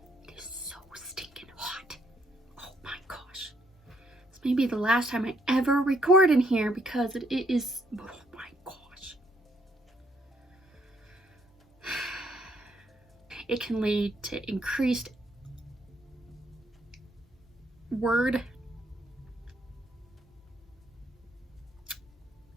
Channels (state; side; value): normal; both; correlation 0.71